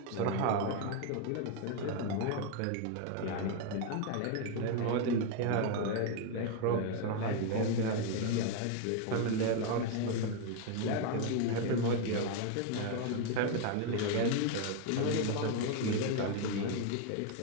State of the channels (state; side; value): different; both; correlation 0.01